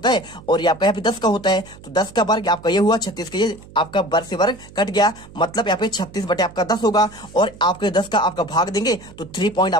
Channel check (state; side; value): noise; right; hum, 20 dB below the sound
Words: है और ये आपका यहाँ पे 10 का होता है। तो 10 का वर्ग आपका ये हुआ, 36 का ये आपका वर्ग से वर्ग कट गया, मतलब यहाँ पे 36 आपका 10 होगा और आपके 10 का आपका भाग देंगे तो 3 पॉइंट